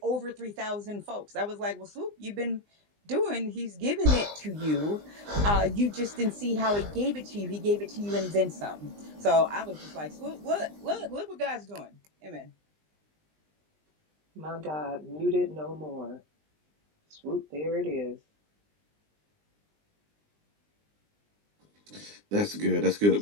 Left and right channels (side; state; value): left; late; 20 ms